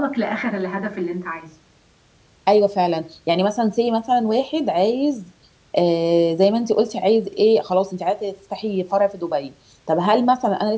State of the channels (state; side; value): identical; both; correlation 1.00